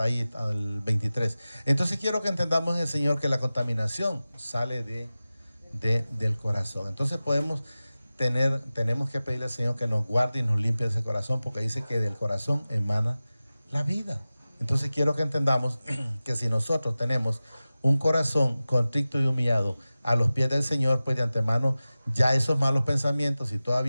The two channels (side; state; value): both; inverted; correlation -0.96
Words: ahí al 23. Entonces quiero que entendamos en el Señor que la contaminación sale del corazón. Entonces tenemos que pedirle al Señor que nos guarde y nos limpie ese corazón, porque dice que del corazón emana la vida. Entonces quiero que entendamos que si nosotros tenemos un corazón contrito y humillado a los pies del Señor, pues de antemano ya esos malos pensamientos, si